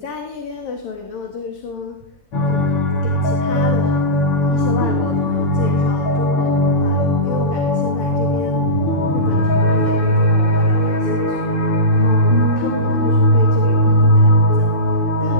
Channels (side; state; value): both; normal; correlation -0.19